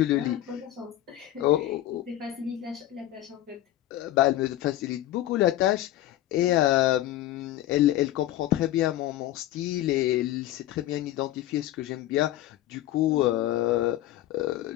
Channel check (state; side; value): quieter; right; 14.0 dB